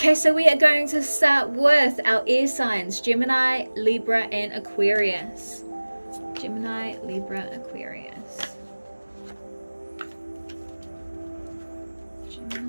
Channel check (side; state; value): both; inverted; correlation -1.00